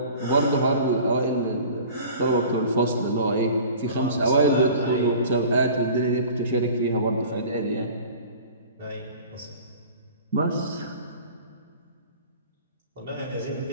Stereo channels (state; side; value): inverted; both; correlation -0.43